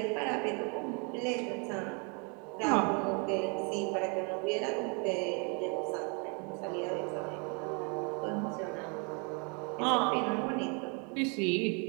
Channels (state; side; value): quieter; left; 35.1 dB